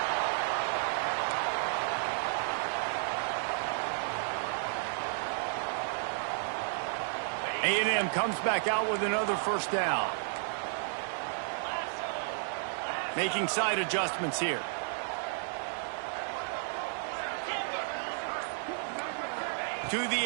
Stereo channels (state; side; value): silent; left; digital silence